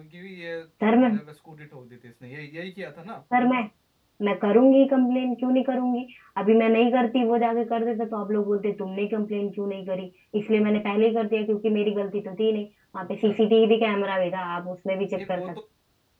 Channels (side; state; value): both; identical; correlation 1.00